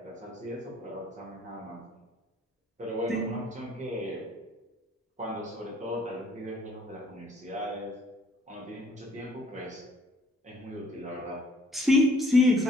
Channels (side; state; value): both; normal; correlation 0.61